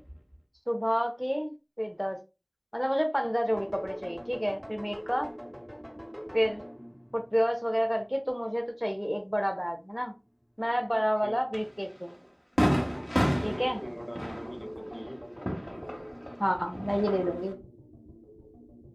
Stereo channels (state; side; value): identical; both; correlation 1.00